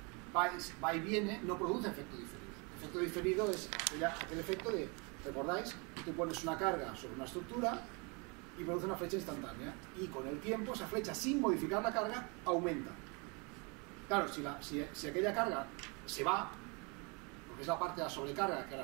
va y viene, no produce efecto diferido. El efecto diferido es aquel efecto de, ¿recordáis? Tú pones una carga sobre una estructura y produce una flecha instantánea. Y con el tiempo esa flecha, sin modificar la carga, aumenta. Claro, si aquella carga se va, es la parte de la sobrecarga que ahora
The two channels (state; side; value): quieter; left; 31.7 dB